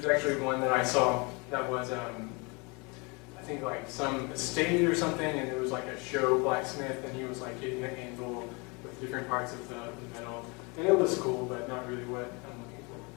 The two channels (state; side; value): quieter; right; 29.5 dB